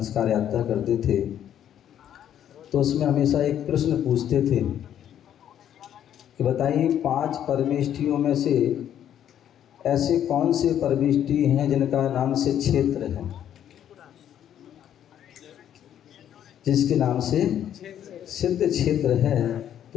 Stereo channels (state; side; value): quieter; right; 10.3 dB